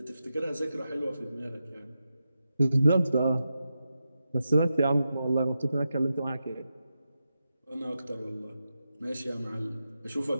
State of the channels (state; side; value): inverted; both; correlation -0.89